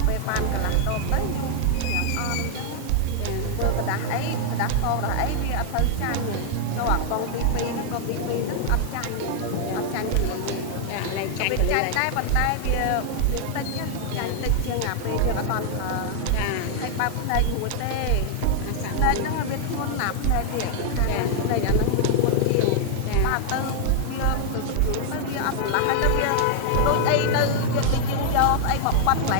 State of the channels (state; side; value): different; both; correlation 0.00